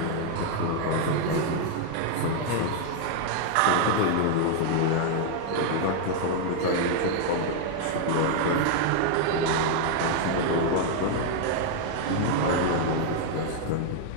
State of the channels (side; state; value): both; different; correlation 0.00